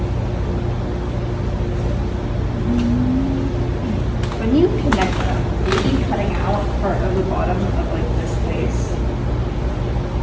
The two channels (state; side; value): identical; both; correlation 1.00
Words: When you connect them, are you cutting out part of the bottom of like this face?